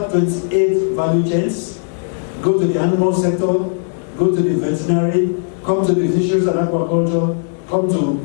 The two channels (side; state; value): right; silent; digital silence